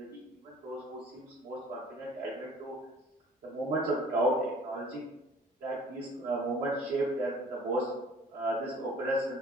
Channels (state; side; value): normal; both; correlation 0.51